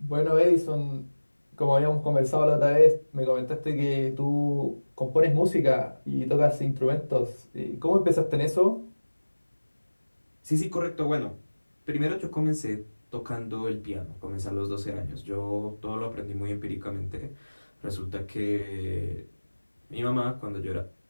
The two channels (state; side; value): inverted; both; correlation -1.00